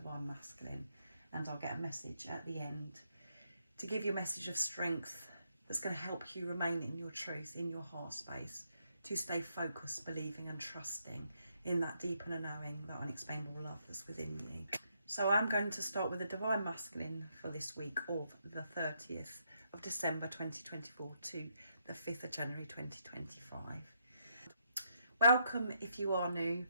Masculine, and I'll get a message at the end to give you a message of strength that's going to help you remain in your truth, in your heart space, to stay focused, believing and trusting in that deep inner knowing, that unexplainable love that's within you. So I'm going to start with the Divine Masculine for this week of the 30th of December 2024 to the 5th of January 2025. Welcome if you are new.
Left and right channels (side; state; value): both; inverted; correlation -0.76